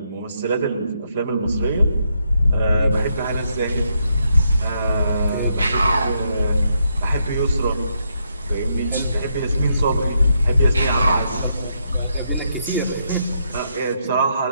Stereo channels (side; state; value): both; inverted; correlation -0.78